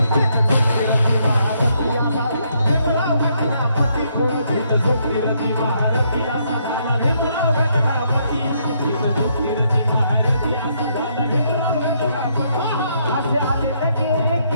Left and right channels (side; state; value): both; inverted; correlation -0.73